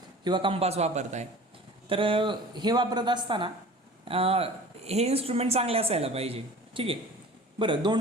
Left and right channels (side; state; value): both; normal; correlation 0.42